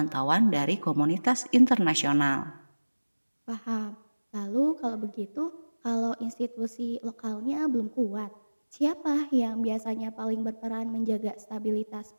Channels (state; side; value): inverted; both; correlation -1.00